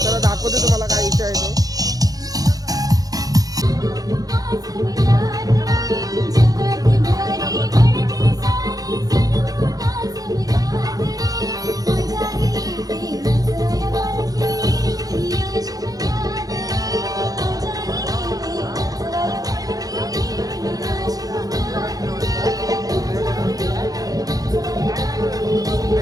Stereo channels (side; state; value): left; late; 0.18 ms